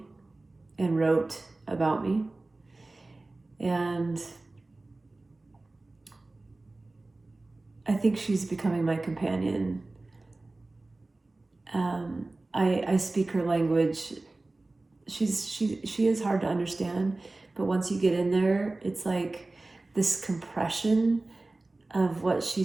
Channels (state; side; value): quieter; left; 3.1 dB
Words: and wrote about me. And I think she's becoming my companion. I speak her language. She is hard to understand, but once you get in there, it's like this compression of what